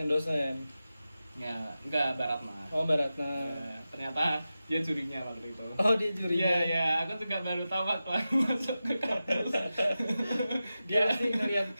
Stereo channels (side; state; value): both; inverted; correlation -0.93